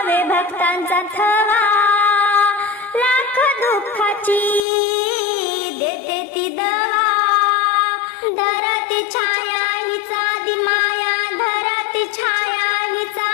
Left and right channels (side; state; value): right; drops out; at 4.6 s